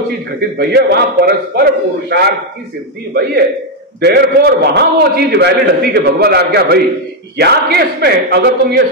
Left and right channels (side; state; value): both; normal; correlation 0.03